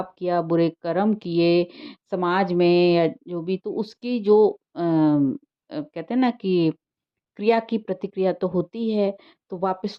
किया, बुरे कर्म किए समाज में या जो भी, तो उसकी जो कहते हैं ना कि क्रिया की प्रतिक्रिया तो होती है, तो वापस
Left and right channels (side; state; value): both; identical; correlation 1.00